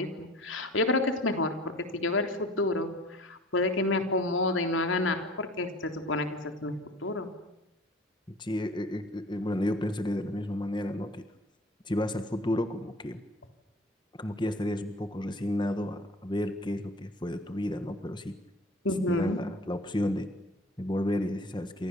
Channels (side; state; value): both; normal; correlation 0.45